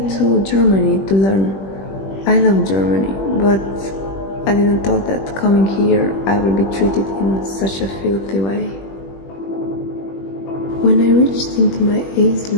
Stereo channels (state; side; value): late; right; 21 ms